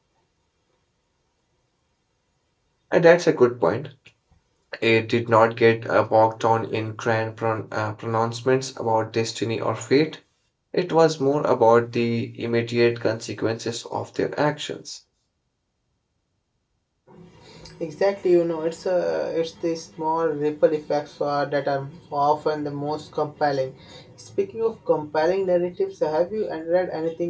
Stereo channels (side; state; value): both; identical; correlation 1.00